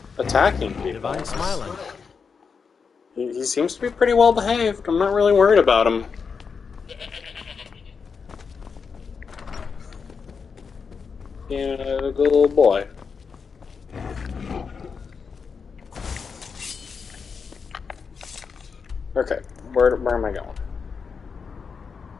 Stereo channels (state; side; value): quieter; right; 5.7 dB